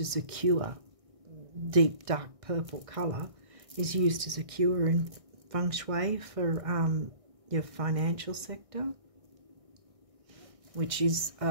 as a cure. Deep dark purple colour is used as a cure in feng shui for your financial sector, which is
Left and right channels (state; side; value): late; left; 1.6 ms